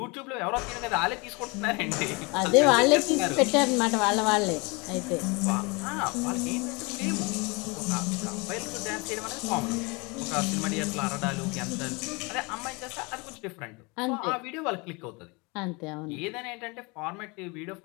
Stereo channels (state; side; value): quieter; right; 27.9 dB